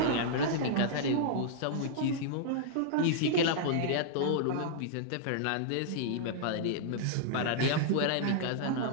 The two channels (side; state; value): both; different; correlation -0.02